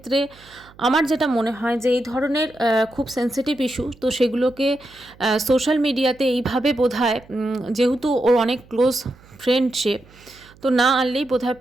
আমার যেটা মনে হয় যে এই ধরনের খুব সেন্সিটিভ ইস্যু, তো সেগুলোকে সোশ্যাল মিডিয়াতে এইভাবে বোধহয়, যেহেতু ওর অনেক ক্লোজ ফ্রেন্ড সে, তো না আনলেই বোধহয়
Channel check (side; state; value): right; noise; hum, 26 dB below the sound